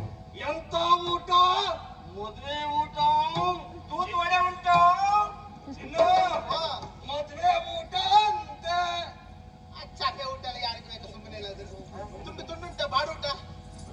ಎಂತ ಊಟ? ಮದುವೆ ಊಟ, ತೂತು ವಡೆ ಉಂಟು. ಇನ್ನು ಮದುವೆ ಊಟ ಅಂತೆ. ಚಾಪೆ ಊಟ ಎಲ್ಲ ಯಾರಿಗೆ ಬೇಕು? ಸುಮ್ಮನೆ ಎಲ್ಲಾದ್ರು ತುಂಡು ತುಂಡುಂಟ ಬಾಡೂಟ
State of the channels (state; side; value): identical; both; correlation 1.00